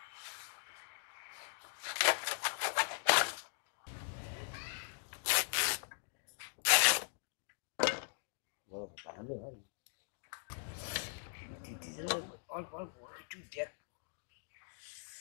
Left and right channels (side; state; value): right; silent; digital silence